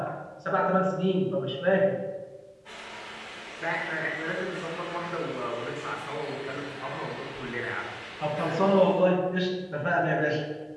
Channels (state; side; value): identical; both; correlation 1.00